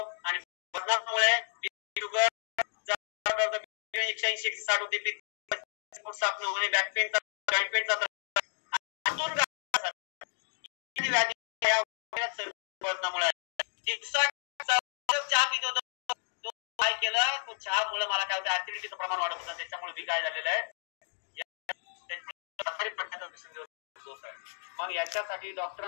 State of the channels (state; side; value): silent; right; digital silence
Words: आणि वजनामुळे शुगर 180-160 होते. साफ न होणे, बॅक पेन, जॉइंट पेनचा वजनामुळे चहा पित होतो. तो काय केलं, तो चहामुळे मला काय होतं ऍसिडिटीचं प्रमाण वाढत होतं. त्याच्यामुळे मी काय झालेलं आहे सोर्स आहे. मग याच्यासाठी